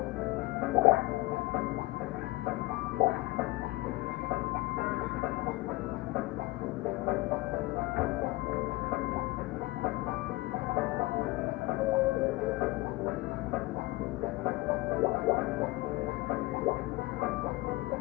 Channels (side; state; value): right; quieter; 20.8 dB